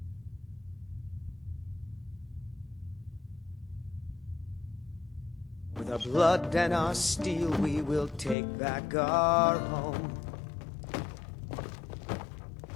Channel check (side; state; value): right; drops out; at 8.3 s